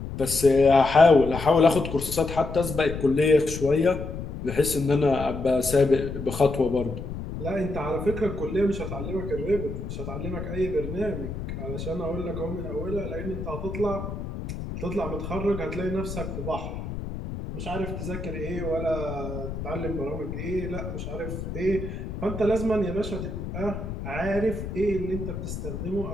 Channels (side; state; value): left; noise; rumble, 7 dB below the sound